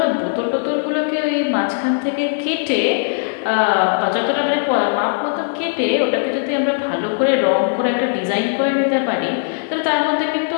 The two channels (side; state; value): right; silent; digital silence